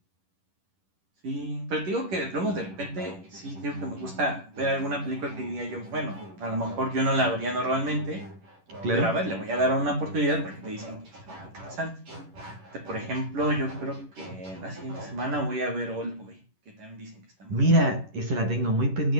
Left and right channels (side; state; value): left; late; 10 ms